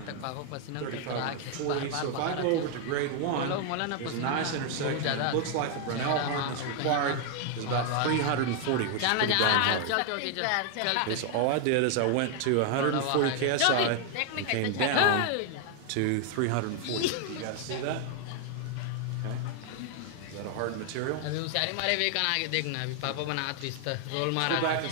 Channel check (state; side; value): different; both; correlation 0.00